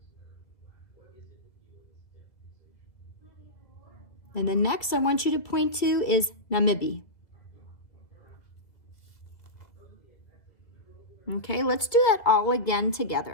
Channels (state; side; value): late; right; 2.2 ms